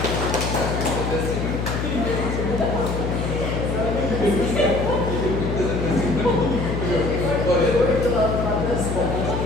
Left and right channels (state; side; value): noise; left; hum, 2 dB below the sound